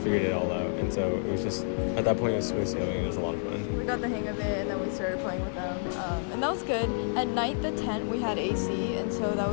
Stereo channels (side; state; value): right; silent; 58 dB below the other